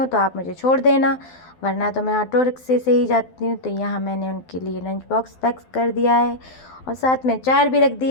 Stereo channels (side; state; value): right; late; 12 ms